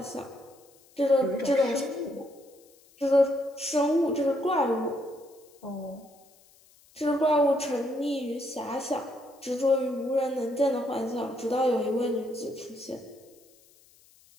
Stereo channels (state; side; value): noise; left; hiss, 29 dB below the sound